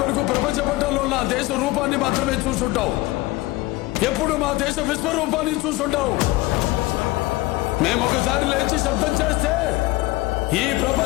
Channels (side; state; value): right; quieter; 19.8 dB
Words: వరకు ప్రపంచ పట్టణంలో నా దేశ రూపాన్ని మాత్రమే చూసుంటావు. ఎప్పుడు మా దేశ విశ్వరూపాన్ని చూసుంటావు. మేము ఒకసారి లేచి శబ్దం చేస్తే ఈ